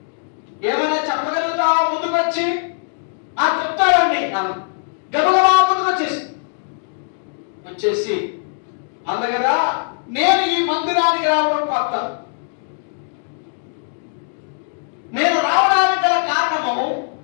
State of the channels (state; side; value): silent; right; digital silence